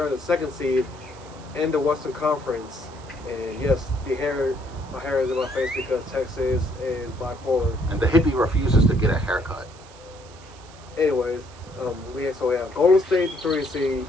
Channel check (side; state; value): right; noise; hiss, 23 dB below the sound